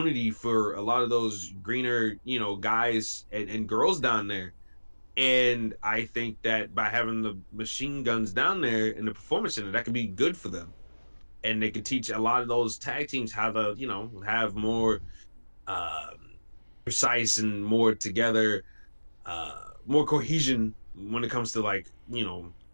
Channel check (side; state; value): both; inverted; correlation -1.00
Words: for a lot of those greener, guys and girls down there. And I think that by having the machine guns down there in the Performance Center, that could be good for them. And they could teach a lot of those tag teams how to, have more precise and more together, more cohesion when it comes to